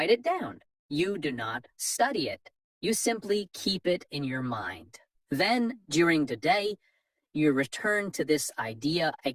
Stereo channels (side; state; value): both; identical; correlation 1.00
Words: it down. You do not study it. You simply keep it in your mind. Then, during the day, you return to this idea